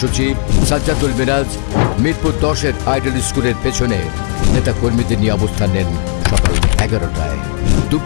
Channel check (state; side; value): silent; right; 61 dB below the other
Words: সাজ্জাদুল মিরাজ মিরপুর 10-এর আইডল স্কুলের পেছনে নেতাকর্মীদের নিয়ে অবস্থান নেন সকাল 11টায়।